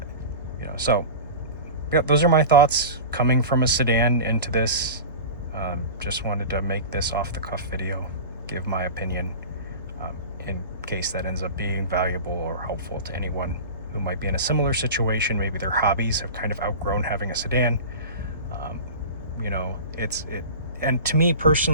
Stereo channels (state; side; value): inverted; both; correlation -0.32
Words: So yeah, those are my thoughts coming from a sedan into this. Just wanted to make this off-the-cuff video, give my opinion, in case that ends up being valuable or helpful to anyone who might be in a similar situation. Maybe their hobbies have kind of outgrown having a sedan. And to me